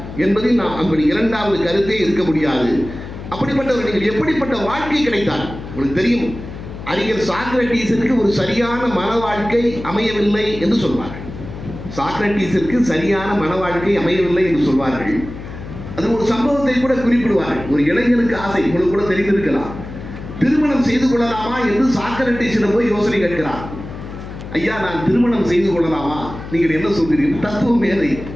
என்பதில் நாம் அப்படி இரண்டாவது கருத்தே இருக்க முடியாது. அப்படிப்பட்டவர்கள் எப்படிப்பட்ட வாழ்க்கை கிடைத்தார் உங்களுக்கு தெரியும். அறிஞர் சாக்ரட்டீஸிற்கு ஒரு சரியான மன வாழ்க்கை அமையவில்லை என்று சொல்வார்கள். சாக்ரட்டீஸிற்கு சரியான மன வாழ்க்கை அமையவில்லை என்று சொல்வார்கள். அது ஒரு சம்பவத்தை கூட குறிப்பிடுவார்கள். ஒரு இளைஞனுக்கு ஆசை, உங்களுக்கு கூட தெரிந்திருக்கலாம், திருமணம் செய்து கொள்ளலாமா என்று சாக்ரட்டீஸிடம் போய் யோசனை கேட்கிறார். ஐயா, நான் திருமணம் செய்து கொள்ளலாமா, நீங்கள் என்ன சொல்கிறீர்கள்? தத்துவ மேதை.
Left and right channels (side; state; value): left; noise; hum, 11 dB below the sound